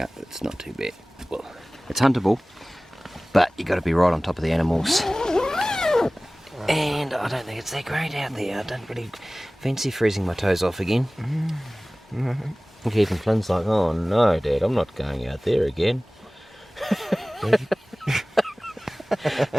It's not too bad. Well, it's huntable, but you got to be right on top of the animals. And I don't think it's that great out there. I don't really fancy freezing my toes off again. And even Flynn's like, oh no, Dad, I'm not going out there again.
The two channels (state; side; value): normal; both; correlation 0.98